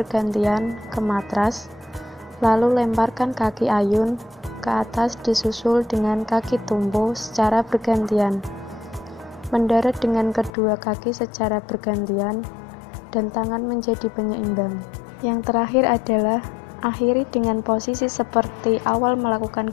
ke matras, lalu lemparkan kaki ayun ke atas disusul dengan kaki tumpu secara bergantian. Mendarat dengan kedua kaki secara bergantian dan tangan menjadi penyeimbang. Yang terakhir adalah akhiri dengan posisi seperti awal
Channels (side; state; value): right; drops out; at 10.5 s